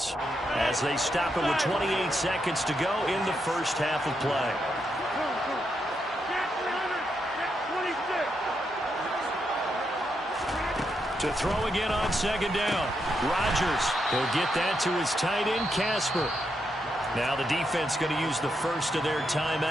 as they stop it with 28 seconds to go in the first half of play. To throw again on second down. Rodgers, he'll get that to his tight end, Casper. Now the defense going to use the first of their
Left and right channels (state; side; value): normal; both; correlation 0.82